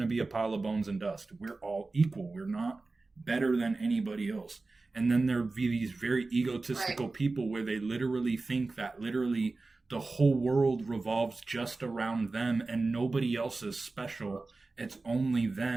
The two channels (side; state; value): left; quieter; 3.5 dB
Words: to be a pile of bones and dust. We're all equal. We're not better than anybody else. And then there'll be these very egotistical people where they literally think that literally the whole world revolves just around them and nobody else is special. It's only